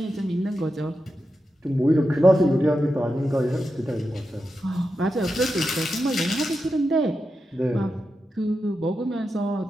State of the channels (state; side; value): normal; both; correlation 0.89